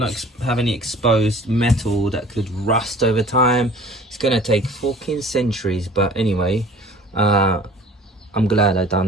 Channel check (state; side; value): normal; both; correlation 0.47